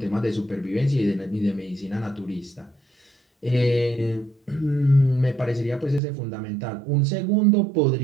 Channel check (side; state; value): left; drops out; at 6.0 s